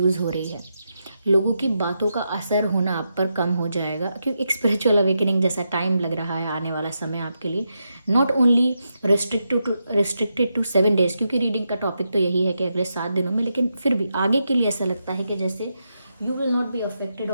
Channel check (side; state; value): both; inverted; correlation -0.85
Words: हो रही है। लोगों की बातों का असर होना आप पर कम हो जाएगा, क्योंकि एक स्पिरिचुअल अवेकनिंग जैसा टाइम लग रहा है आने वाला समय आपके लिए। Not only restricted to 7 days, क्योंकि रीडिंग का टॉपिक तो यही है कि अगले 7 दिनों में, लेकिन फिर भी आगे के लिए ऐसा लगता है कि जैसे you will not be affected